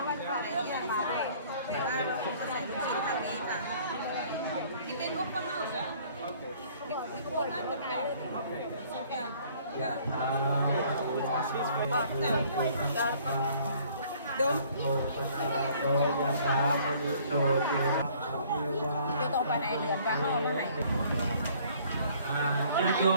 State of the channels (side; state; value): both; inverted; correlation -0.57